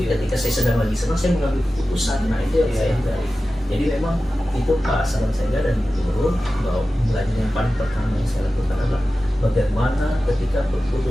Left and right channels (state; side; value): normal; both; correlation 0.94